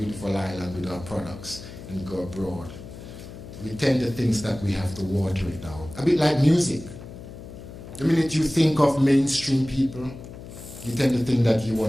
island with our products and go abroad. We tend to think that we have to water it down. A bit like music. The minute you think of mainstream people, you tend to think that you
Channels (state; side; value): noise; left; hum, 14 dB below the sound